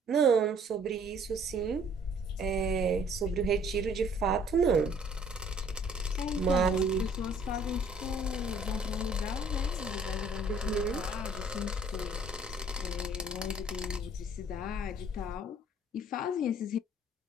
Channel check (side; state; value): both; normal; correlation 0.59